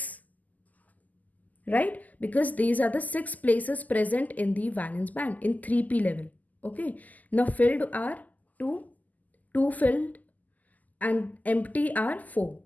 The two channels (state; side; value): late; right; 0.080 ms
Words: right? Because these are the 6 places present in the valence band in 3p level. Okay. Now filled are 2, 2 filled, and empty are 4.